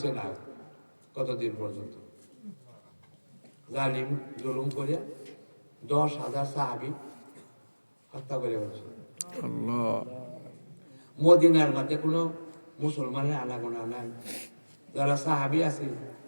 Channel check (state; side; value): inverted; both; correlation -1.00